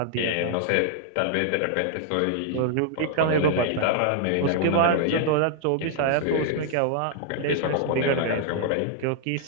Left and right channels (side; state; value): both; different; correlation -0.01